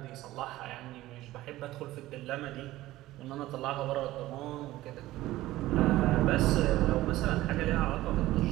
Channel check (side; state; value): left; quieter; 16.4 dB